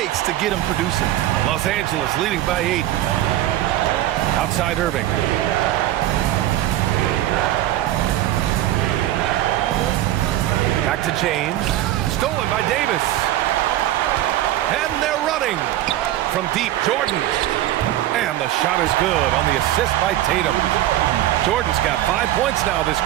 to get him producing. Los Angeles leading by 8. Outside Irving. Back to James. Stolen by Davis. And they're running. From deep, Jordan. And the shot is good on the assist by Tatum. Jordan's got 5 points now this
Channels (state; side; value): quieter; left; 14.0 dB